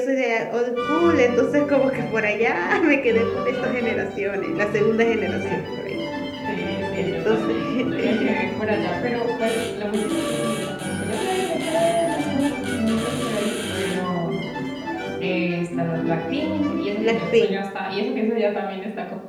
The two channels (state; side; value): identical; both; correlation 1.00